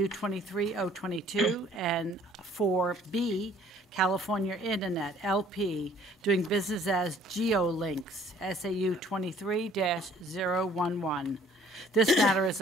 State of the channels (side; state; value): both; normal; correlation 0.57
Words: 23022, and 4B, California Internet, LP, doing business as GeoLinks, SAU 23-011. This matter is